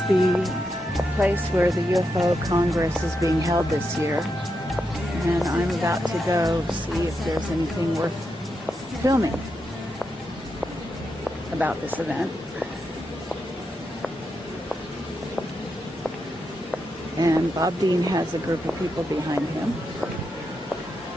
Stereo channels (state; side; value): normal; both; correlation 0.85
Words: the place where the UFO Congress is being held this year. And I'm about to go see if there's anything worth filming about this event. And Bob Dean has a group of people behind him,